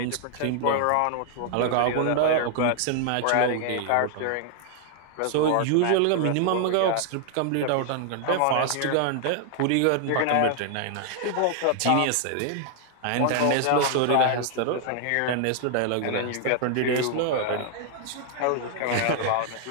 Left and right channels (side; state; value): both; different; correlation 0.00